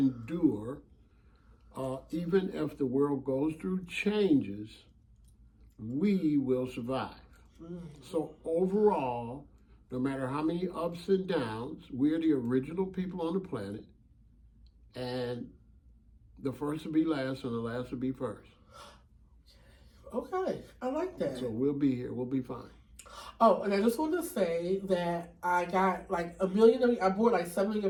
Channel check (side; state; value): both; identical; correlation 1.00